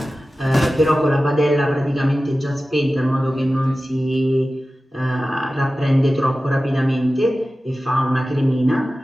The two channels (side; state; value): both; normal; correlation 0.95